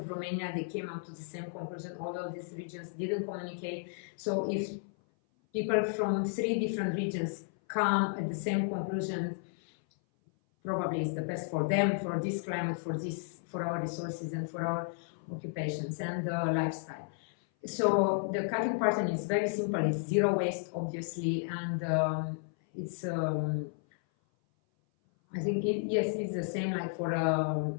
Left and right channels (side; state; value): right; silent; 56 dB below the other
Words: Romania, they came up to the same conclusion, although these regions didn't communicate. So if people from 3 different regions come at the same conclusion, probably it's the best for them, for this climate, for our resources, and for our occupations and lifestyle. So the cutting pattern is very simple. It's zero waste, obviously, and it's. I think it's the same like for a